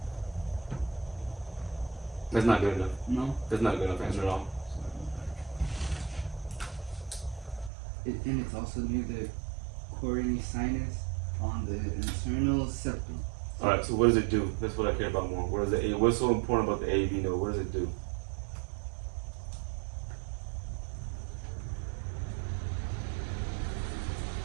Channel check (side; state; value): left; drops out; at 7.7 s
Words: That's not good enough. No. That's not a good enough answer at all. And it's also near the coronary sinus on the internal septum. All right. So what does it do? That's what I care about more. What's so important about the AV node? What does it do?